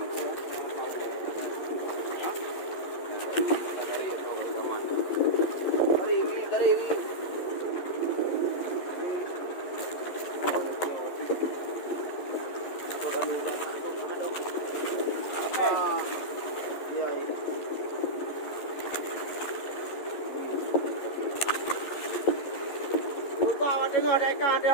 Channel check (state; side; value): late; right; 11 ms